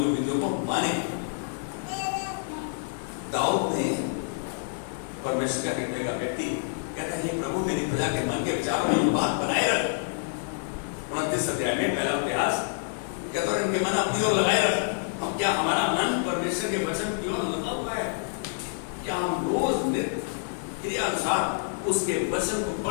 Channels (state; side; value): silent; right; digital silence